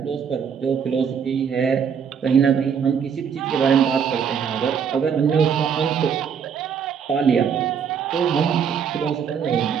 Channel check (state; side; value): quieter; left; 7.3 dB